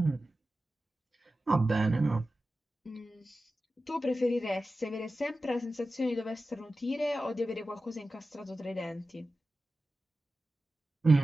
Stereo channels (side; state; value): both; normal; correlation 0.94